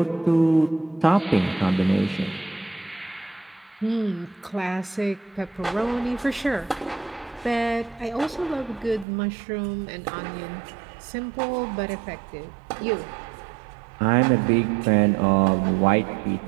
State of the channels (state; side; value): drops out; left; at 9.1 s